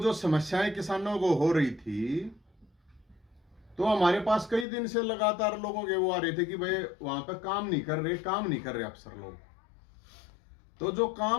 समस्याएं किसानों को हो रही थी तो हमारे पास कई दिन से लगातार लोगों के वो आ रहे थे कि भाई वहां पे काम नहीं कर रहे अफसर लोग। तो जो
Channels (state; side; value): drops out; right; at 4.7 s